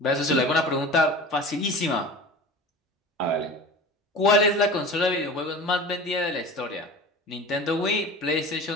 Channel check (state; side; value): normal; both; correlation 0.36